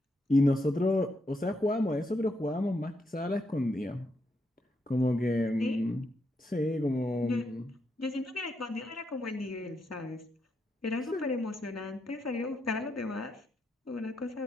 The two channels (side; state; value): both; normal; correlation 0.81